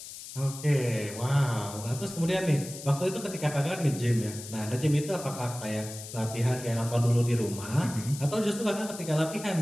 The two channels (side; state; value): left; noise; hiss, 12 dB below the sound